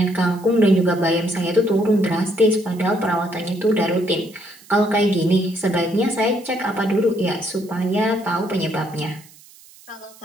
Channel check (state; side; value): noise; right; hiss, 24 dB below the sound